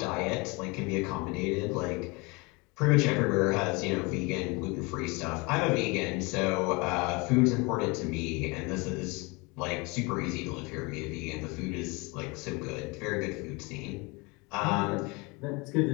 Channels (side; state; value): right; quieter; 27.1 dB